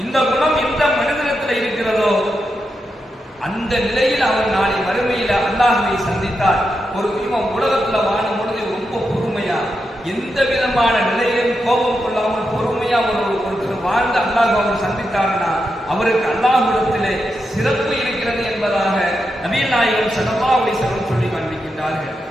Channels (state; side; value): normal; both; correlation 0.86